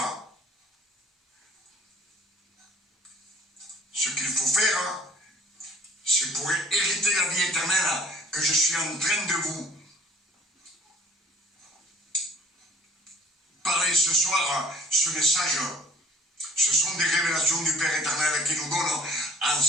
Ce qu'il faut faire, c'est pour hériter la vie éternelle que je suis en train de vous parler ce soir. Ce message, ce sont des révélations du Père éternel qui nous donne en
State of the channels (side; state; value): both; normal; correlation 0.52